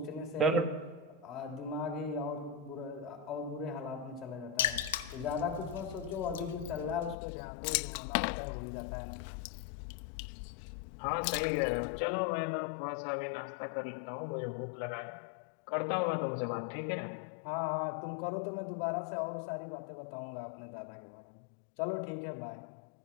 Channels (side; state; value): right; drops out; at 7.2 s